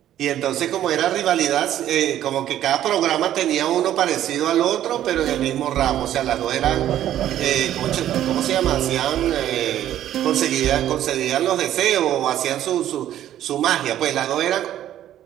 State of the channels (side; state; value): left; quieter; 11.9 dB